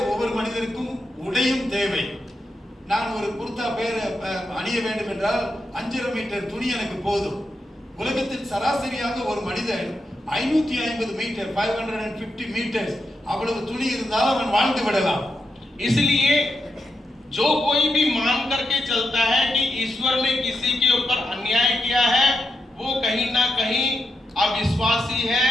ஒவ்வொரு மனிதருக்கும் உடையும் தேவை. நான் ஒரு குர்தா அணிய வேண்டும் என்றால் 5.5 மீட்டர் துணி எனக்கு போதும். உலகத்தில் சராசரியாக ஒரு மனிதன் 550 மீட்டர் 550 மீட்டர்ஸ் அவ்வளவு துணி இருந்தால் அவன் வாழ்ந்து விடலாம். इसलिए जो कोई भी मान करके चलता है कि ईश्वर ने किसी के ऊपर अन्याय किया है, वो कहीं ना कहीं अविश्वासी है,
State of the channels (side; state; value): both; normal; correlation 0.85